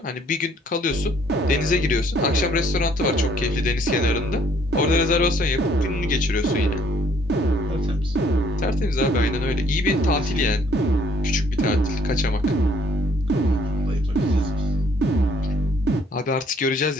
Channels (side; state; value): both; normal; correlation 0.63